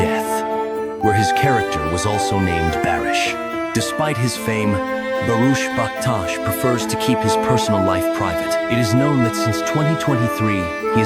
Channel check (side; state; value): both; identical; correlation 1.00